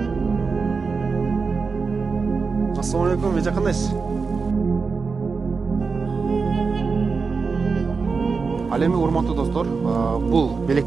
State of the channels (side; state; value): left; quieter; 4.8 dB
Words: Assalamu alaikum, эже кандайсыз? Ал эми урматтуу достор, бул